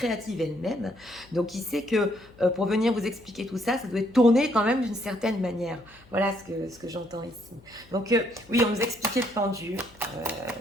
elle-même. Donc, il sait que pour venir vous expliquer tout ça, ça doit être tourné quand même d'une certaine manière. Voilà ce que j'entends ici. Donc, oui, on nous expliquait le pendu,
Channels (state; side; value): noise; left; hum, 26 dB below the sound